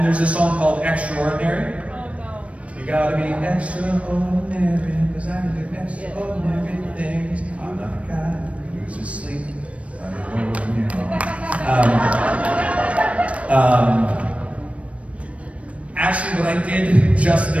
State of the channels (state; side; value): late; left; 0.063 ms